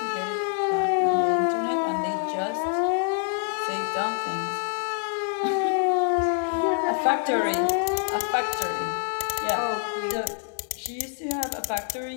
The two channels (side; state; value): right; silent; 58 dB below the other